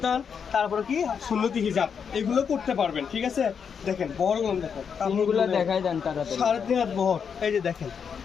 তারপরে কি সুন্নতি হিজাব, এগুলো করতে পারবেন। ঠিক আছে, দেখেন বড়গুলো দেখেন, কাপড়গুলো দেখাই দেন তাড়াতাড়ি। 3.5 বহর। এই যে দেখেন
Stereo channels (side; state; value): right; quieter; 6.8 dB